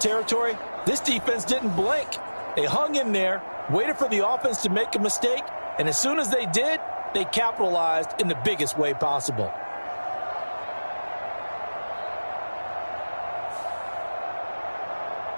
This defense didn't blink. They hung in there, waited for the offense to make a mistake, and as soon as they did, they capitalized in the biggest way possible.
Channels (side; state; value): both; inverted; correlation -1.00